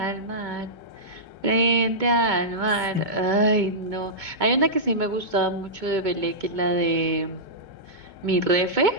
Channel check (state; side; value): late; left; 2.2 ms